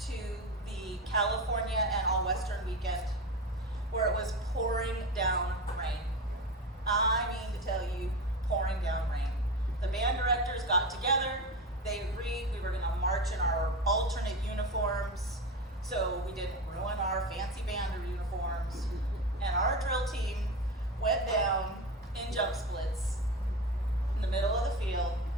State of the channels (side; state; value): both; normal; correlation 0.23